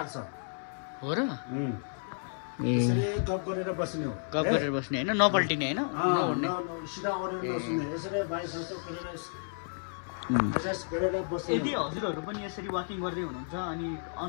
हो र यसरी गफ गरेर बस्ने हो गफ गरेर बस्ने होइन नपल्टिने होइन सिधा ओरेर नसुन्ने यसरी बाई संस्था गरेर बस्ने यदि हजुरहरू पनि यसरी वाकिङ गर्दै हुनुहुन्छ अनि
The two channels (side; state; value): right; silent; 57 dB below the other